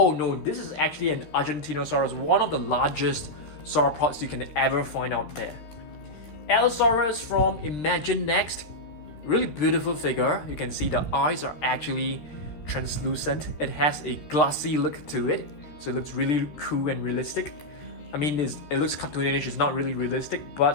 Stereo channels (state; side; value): late; right; 13 ms